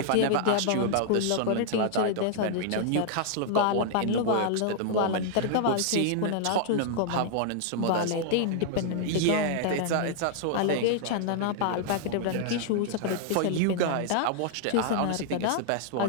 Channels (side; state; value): both; different; correlation -0.01